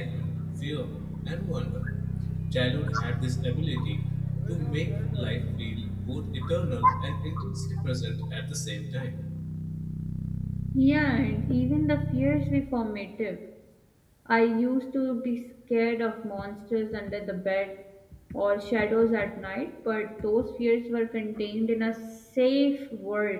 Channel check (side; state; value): both; identical; correlation 1.00